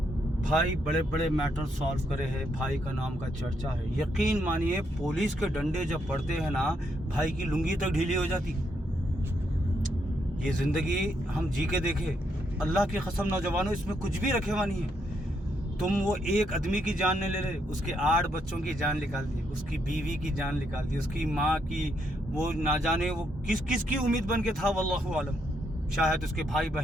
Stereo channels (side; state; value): both; normal; correlation 0.77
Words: भाई बड़े बड़े मैटर सॉल्व करे हैं, भाई का नाम का चर्चा है। यकीन मानिए पुलिस के डंडे जब पड़ते हैं ना, भाई की लुंगी तक ढीली हो जाती। ये ज़िंदगी हम जी के देखे, अल्लाह की कसम नौजवानों, इसमें कुछ भी रखे हुआ नहीं है। तुम वो एक आदमी की जान नहीं ले रहे, उसके 8 बच्चों की जान निकाल दी, उसकी बीवी की जान निकाल दी, उसकी माँ की, वो ना जाने वो किस की उम्मीद बन के था, वल्लाहु आलम। शायद उसके भाई